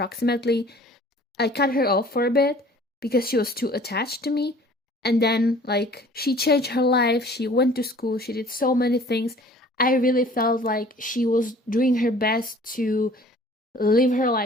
I cut her off for a bit because she was too attached to me. And then, like, she changed her life. She went to school. She did so many things. I really felt like she was doing her best to live her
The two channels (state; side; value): normal; both; correlation 0.50